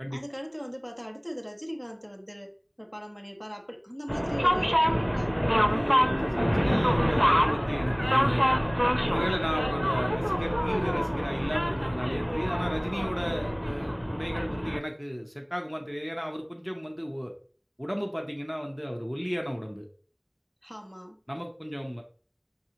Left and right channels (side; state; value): both; identical; correlation 1.00